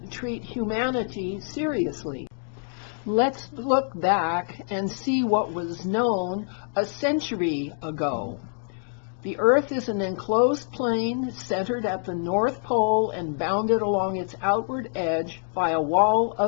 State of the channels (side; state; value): right; silent; digital silence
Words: treat humanity seriously. Let's look back and see what was known a century ago. The Earth is an enclosed plane centered at the North Pole and bounded along its outward edge by a wall